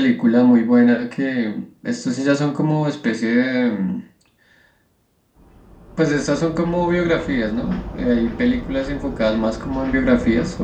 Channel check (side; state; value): both; identical; correlation 1.00